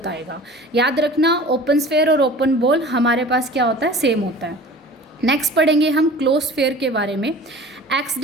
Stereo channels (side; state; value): both; normal; correlation 0.42